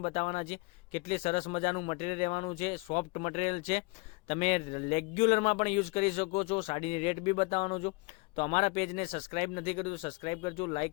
બતાવવાના છે કેટલી સરસ મજાનું મટીરિયલ રહેવાનું છે, સોફ્ટ મટીરિયલ છે। તમે રેગ્યુલરમાં પણ યુઝ કરી શકો છો। સાડીની રેટ બી બતાવવાનો છું। તો અમારા પેજને સબસ્ક્રાઇબ નથી કર્યું તો સબસ્ક્રાઇબ કરજો, લાઇક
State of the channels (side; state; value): right; quieter; 27.4 dB